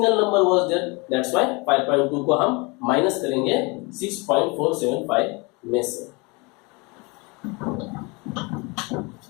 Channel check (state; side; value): quieter; right; 28.0 dB